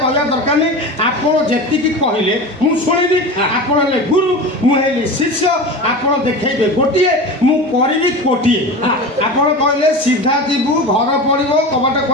କହିବା ଦରକାର ନାହିଁ। ଆପଣ ଯେତିକି କହିଲେ ମୁଁ ଶୁଣିବି। ଆପଣ ହେଲେ ଗୁରୁ, ମୁଁ ହେଲି ଶିଷ୍ୟ। ଆପଣ ଦେଖେଇବେ ଗୋଟିଏ, ମୁଁ କରିବି କୋଟିଏ। ଆପଣ କହିଲେ ସିଧା ଯିବୁ, ଘର ପଡ଼ିବ, କବାଟ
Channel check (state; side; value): normal; both; correlation 0.29